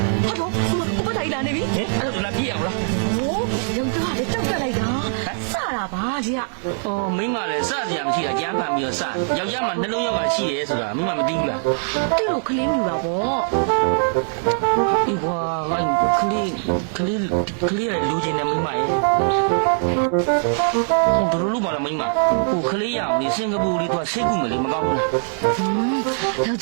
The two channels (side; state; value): left; silent; digital silence